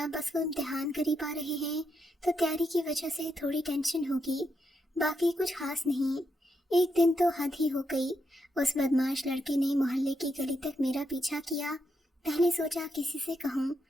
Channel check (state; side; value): normal; both; correlation 0.82